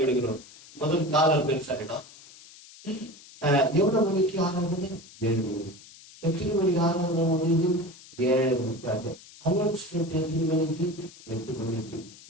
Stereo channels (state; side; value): noise; left; hiss, 21 dB below the sound